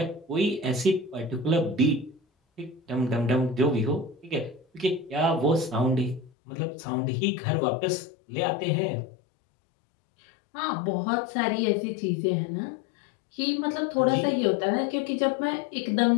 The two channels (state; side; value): drops out; right; at 6.3 s